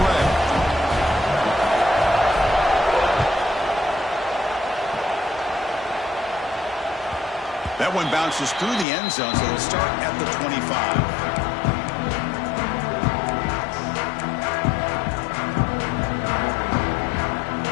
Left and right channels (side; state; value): right; drops out; at 8.8 s